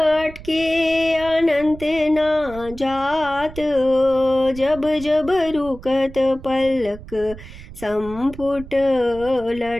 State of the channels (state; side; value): noise; right; rumble, 16 dB below the sound